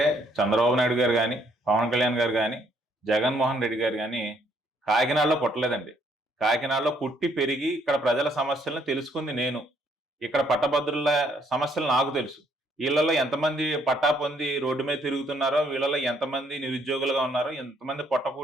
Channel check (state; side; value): normal; both; correlation 0.68